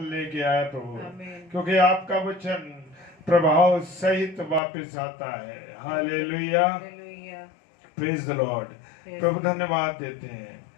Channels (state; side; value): drops out; right; at 4.6 s